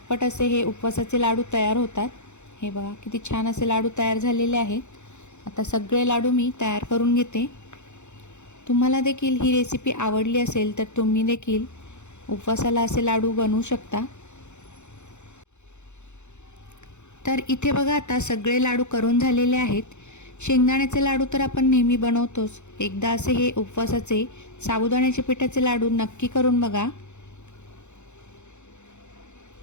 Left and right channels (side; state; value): right; late; 0.83 ms